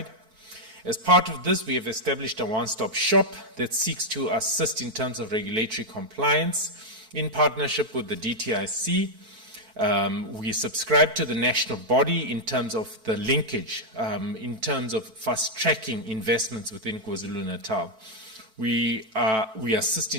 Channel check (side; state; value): left; late; 4.4 ms